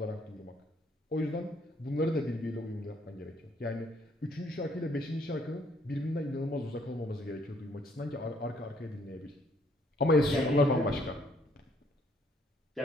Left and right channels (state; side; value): normal; both; correlation 0.66